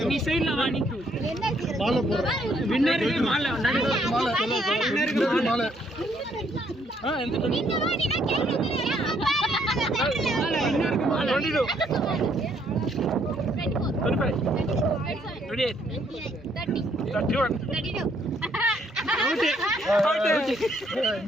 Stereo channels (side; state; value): both; normal; correlation 0.69